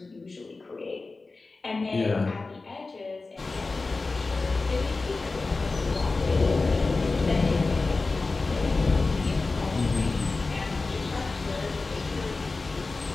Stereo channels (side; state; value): right; quieter; 3.7 dB